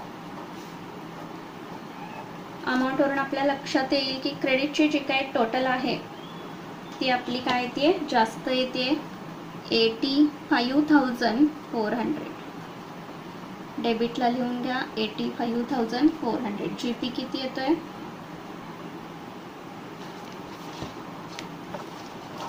अमाऊंटवरून आपल्या लक्षात येईल की क्रेडिटची जी काही टोटल आहे ती आपली काय येते जास्त येते 85400. डेबिटला लिहून घ्या 85400. जीपी किती येतोय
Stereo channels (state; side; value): identical; both; correlation 1.00